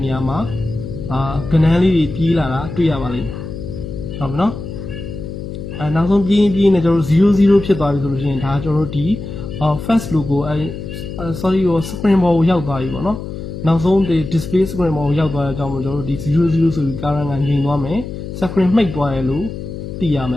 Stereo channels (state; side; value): noise; left; hum, 8 dB below the sound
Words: နေရာမှာကဏ္ဍလေးတွေပြေးလာတာတွေ့ရပါလိမ့်မယ်ဟုတ်ပြီနော်နောက်ဆုံးပြေးနေကျွန်တော်တို့00ဖြစ်သွားပြီဆိုလို့ရှိရင်ဒါကျွန်တော်တို့ဒီ first logo sorry spring ball ကိုရောက်သွားပြီပေါ့နော် နောက်ဆုံးဒီ display screen မှာရောက်သွားတဲ့အကြောင်းမို့ကျွန်တော်တို့ဒီ00ဆိုပြီး current ကငြိမ်သွားမယ် screen မှိတ်သွားတယ်လို့သိရမယ